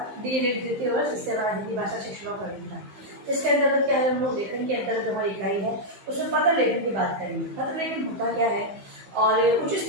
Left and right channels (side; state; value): left; late; 15 ms